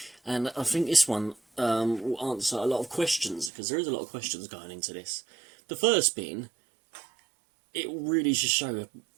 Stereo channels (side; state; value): left; drops out; at 3.5 s